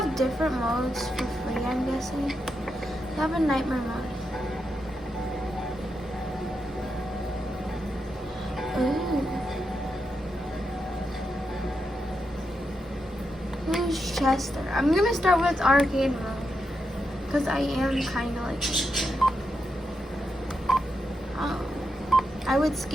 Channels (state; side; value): normal; both; correlation 0.85